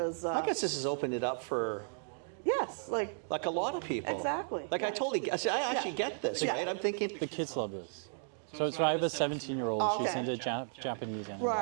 I guess this has opened it up for yes, like a lot of people. Exactly. Like I totally, I actually get this, Yeah. right? I'm thinking, The kids love this. So I have a 17-year-old. Oh, She's okay. into Japanese anime.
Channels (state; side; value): silent; left; digital silence